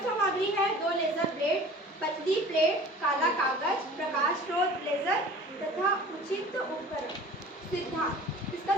सामग्री है दो लेजर ब्लेड, पतली प्लेट, काला कागज, प्रकाश स्रोत लेजर तथा उचित उपकरण। सिद्धांत, इसका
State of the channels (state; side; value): normal; both; correlation 0.43